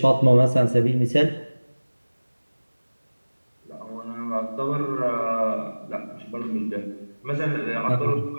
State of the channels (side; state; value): both; inverted; correlation -1.00